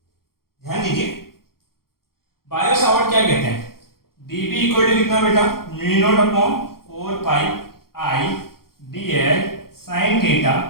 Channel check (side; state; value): right; late; 0.93 ms